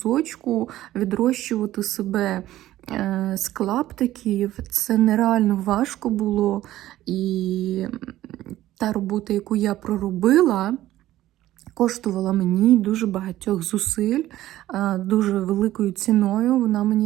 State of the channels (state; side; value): quieter; left; 14.5 dB